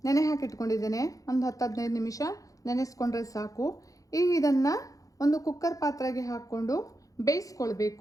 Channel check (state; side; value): late; right; 0.17 ms